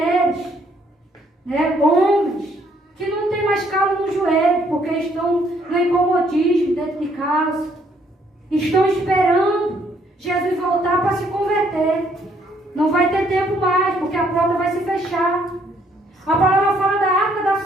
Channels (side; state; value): both; normal; correlation 0.68